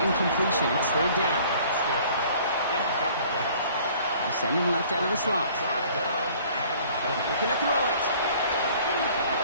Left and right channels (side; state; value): both; inverted; correlation -0.53